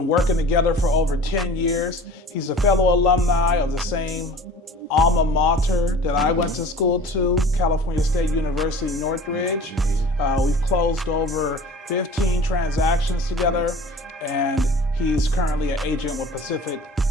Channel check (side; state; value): both; normal; correlation 0.42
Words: working together for over 10 years. He's a fellow alumni of the same alma mater that I went to school to, California State University, Northridge. We've closed over 15 transactions together, and he's currently an agent with Pacific